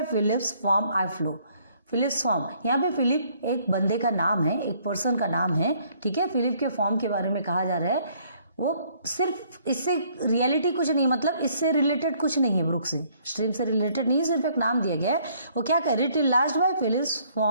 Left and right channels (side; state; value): both; inverted; correlation -0.64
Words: Philip's farm I flow, Philip's farm, यहाँ पे फिलिप एक बंदे का नाम है, एक पर्सन का नाम है, ठीक है। फिलिप के फॉर्म के बारे में कहा जा रहा है। वो सिर्फ इससे रियलिटी कुछ नहीं, मतलब इससे रिलेटेड कुछ नहीं है, ब्रुक से, स्ट्रीम से रिलेटेड नहीं, सिर्फ एक नाम दिया गया है। वो क्या कह रही? Till last by Philip's